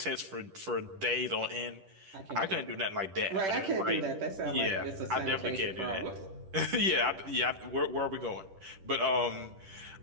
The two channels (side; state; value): left; late; 10 ms